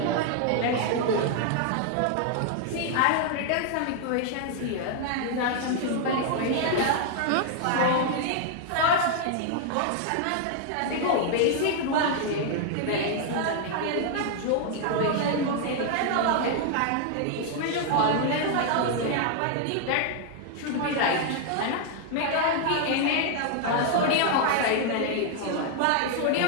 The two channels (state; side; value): different; both; correlation 0.00